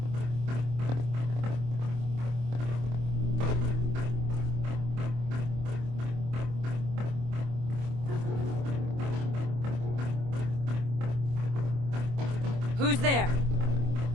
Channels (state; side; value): late; left; 25 ms